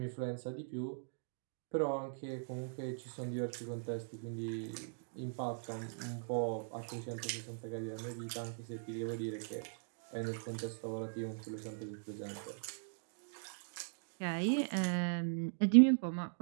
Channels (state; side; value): silent; left; digital silence